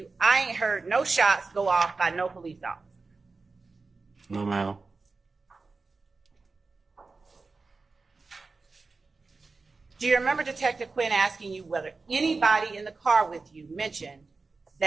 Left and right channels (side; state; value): left; quieter; 4.0 dB